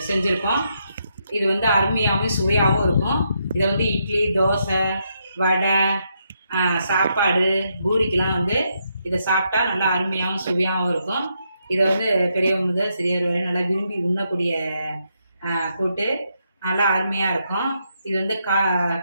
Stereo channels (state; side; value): inverted; both; correlation -0.79